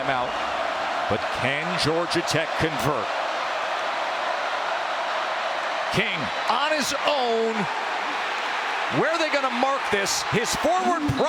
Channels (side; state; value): both; identical; correlation 1.00